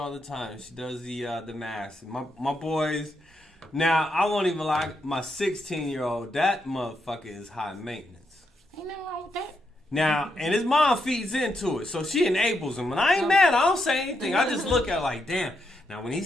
the time. She does the mask. My boys. Now I won't even lie. My 16-year-old, that motherfucker is high maintenance. Ain't nothing wrong with that. Now, and his mom feeds into it, so she enables him. And I ain't mad. I don't say anything. I just look at it like, damn. Now, when he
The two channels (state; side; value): normal; both; correlation 0.81